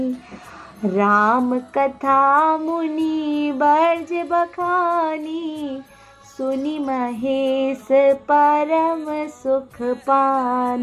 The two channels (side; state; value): both; identical; correlation 1.00